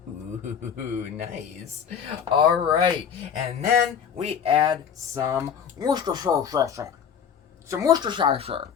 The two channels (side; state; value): right; quieter; 7.7 dB